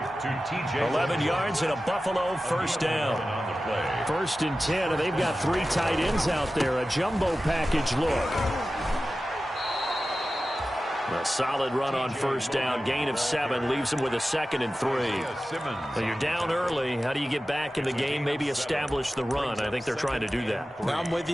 11 yards and a Buffalo first down. 1st and 10, and they've got 3 tight ends out there. A jumbo package look. A solid run on first down. Gain of 7 leaves them with a 2nd and 3. Well, you're down early. How do you get back in the game? Maybe establish the run. I think they're trying to do that. Now, I'm with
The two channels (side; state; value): both; normal; correlation 0.94